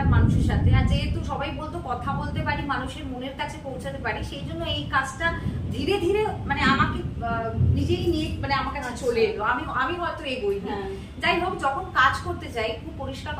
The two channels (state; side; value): identical; both; correlation 1.00